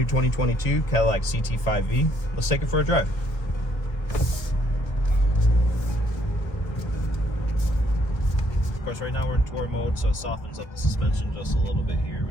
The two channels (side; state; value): right; late; 1.3 ms